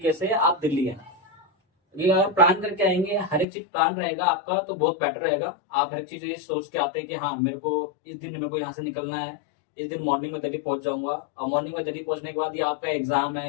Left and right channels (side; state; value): right; drops out; at 3.5 s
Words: से आप दिल्ली आए। अगर प्लान करके आएंगे, हर एक चीज प्लान रहेगा आपका तो बहुत बेटर रहेगा। आप हर एक चीज ये सोच के आते हैं कि हाँ मेरे को इस दिन मेरे को यहाँ से निकलना है, इस दिन मॉर्निंग में दिल्ली पहुंच जाऊंगा। और मॉर्निंग में दिल्ली पहुंचने के बाद ये आपका एग्जाम